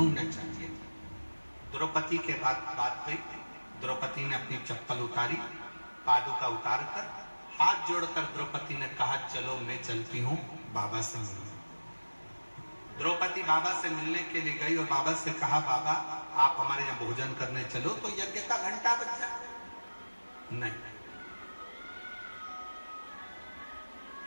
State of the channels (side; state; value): both; inverted; correlation -1.00